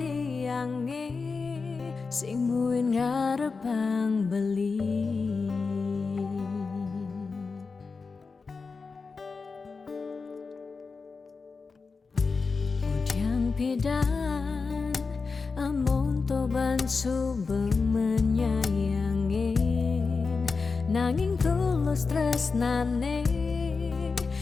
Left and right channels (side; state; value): right; quieter; 4.6 dB